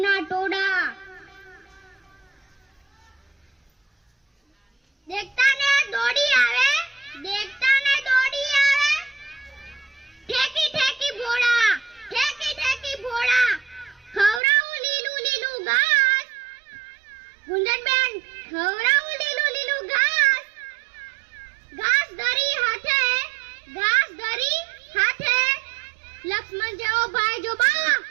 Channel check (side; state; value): left; drops out; at 14.4 s